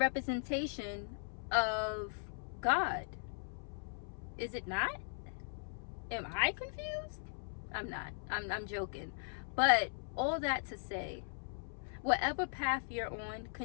of God. Is it not? Am I confused? I'm not. I'm joking. But all that to say, Whatever path you're on,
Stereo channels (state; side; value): silent; right; 52 dB below the other